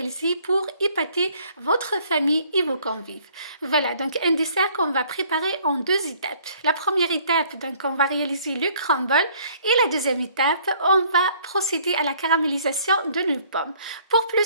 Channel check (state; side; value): inverted; both; correlation -0.59